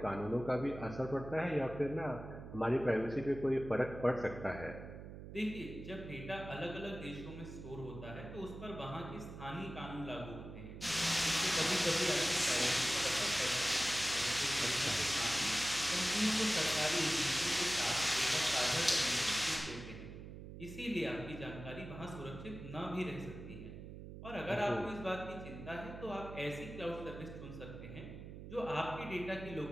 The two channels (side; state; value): right; noise; hum, 11 dB below the sound